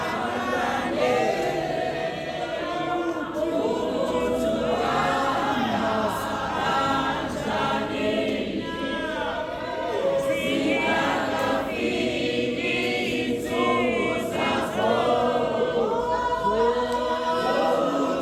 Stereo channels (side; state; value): both; identical; correlation 1.00